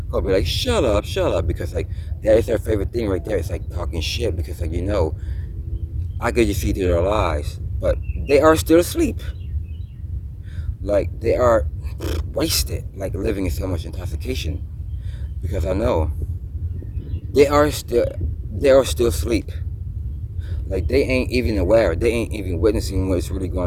I'll be like, shut up, because like that is their favorite thing right there. It's like talking shit, because like I could just see through their lies, but they are still asleep. Like they are wasted, like living in so much intoxication, because I know they are still asleep. Like they ain't even aware. They ain't even witnessing what's really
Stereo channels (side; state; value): both; identical; correlation 1.00